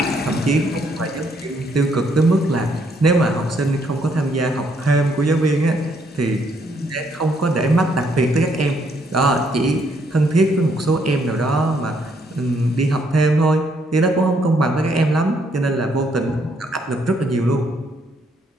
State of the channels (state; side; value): normal; both; correlation 0.71